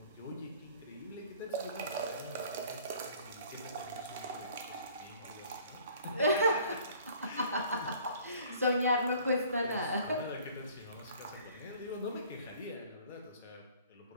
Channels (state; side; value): inverted; both; correlation -0.53